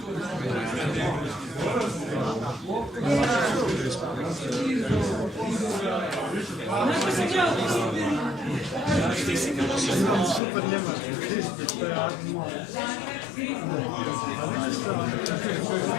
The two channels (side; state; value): right; drops out; at 10.4 s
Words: Super njemački, to je admo.